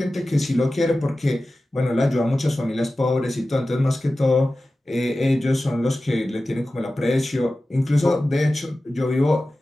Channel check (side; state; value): both; normal; correlation 0.95